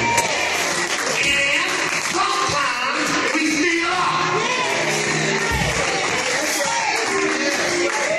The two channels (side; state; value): both; identical; correlation 1.00